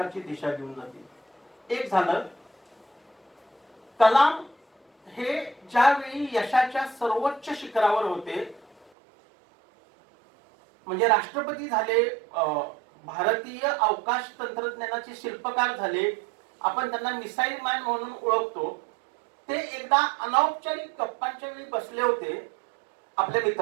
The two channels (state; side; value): drops out; left; at 8.9 s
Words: दिशा देऊन जातील. एक झालं, कलाम हे ज्यावेळी यशाच्या सर्वोच्च शिखरावर होते, म्हणजे राष्ट्रपती झाले, भारतीय अवकाश तंत्रज्ञानाचे शिल्पकार झाले, आपण त्यांना मिसाईल मॅन म्हणून ओळखतो. ते एकदा अनौपचारिक गप्पांच्या वेळी बसले होते आपल्या